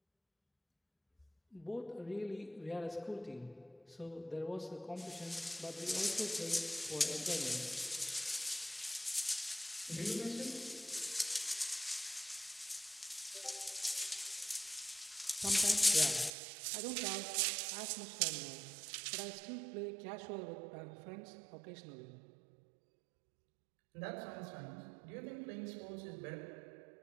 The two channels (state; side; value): drops out; left; at 16.3 s